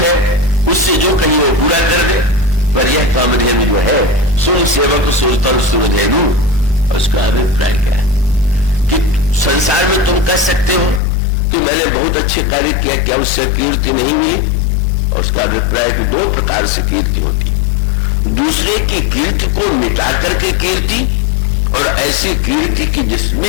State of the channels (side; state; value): right; drops out; at 11.0 s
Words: उससे जो कहीं वो पूरा कर दे। पर यह कामधेनु जो है सुन सेवक सुरतन सुरधेनु। उसका अभिप्राय क्या है कि संसार में तुम कह सकते हो कि मैंने बहुत अच्छे कार्य किया, क्या उससे कीर्ति नहीं हुई? और उसका अभिप्राय कि दो प्रकार से कीर्ति होती है। दूसरे की कीर्ति को मिटा करके कीर्ति, और ऐसी कीर्ति की